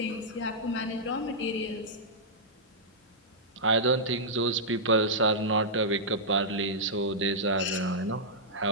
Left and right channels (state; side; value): normal; both; correlation -0.12